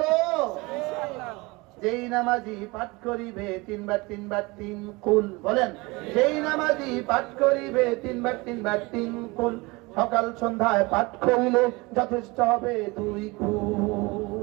যেই নামাজি পাঠ করিবে 3 বার 3 বার 3 কুল, বলেন যেই নামাজি পাঠ করিবে 3 বার 3 বার 3 কুল, সকাল সন্ধ্যায় পাঠ করিলে যথেষ্ট হবে 2 কুল।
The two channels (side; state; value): left; quieter; 24.4 dB